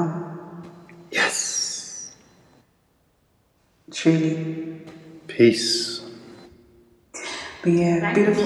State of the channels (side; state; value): both; identical; correlation 1.00